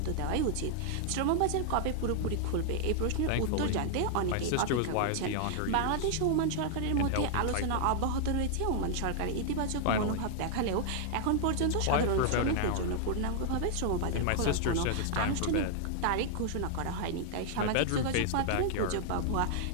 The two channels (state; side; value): different; both; correlation -0.01